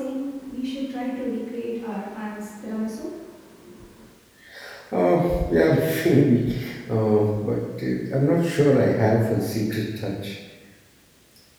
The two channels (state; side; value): identical; both; correlation 1.00